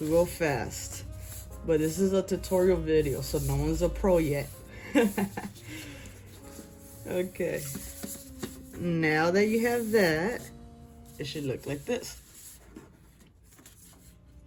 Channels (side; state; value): both; identical; correlation 1.00